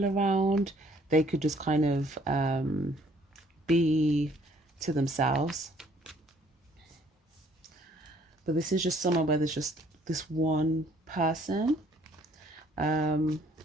around, they could just kind of be to themselves. But this is just somewhere where there's just this one person.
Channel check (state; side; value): normal; both; correlation 0.61